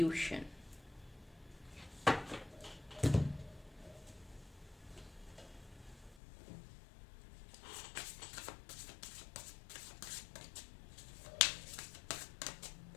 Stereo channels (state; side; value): drops out; right; at 6.2 s